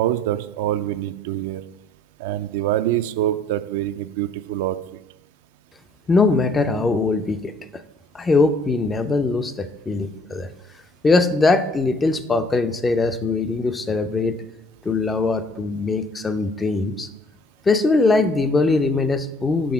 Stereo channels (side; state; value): both; normal; correlation 0.59